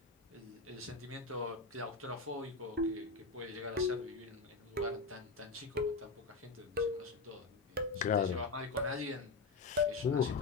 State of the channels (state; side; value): quieter; right; 4.1 dB